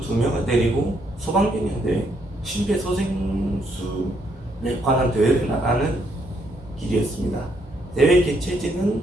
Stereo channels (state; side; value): normal; both; correlation 0.73